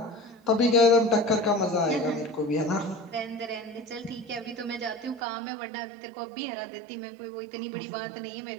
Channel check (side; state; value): left; drops out; at 5.2 s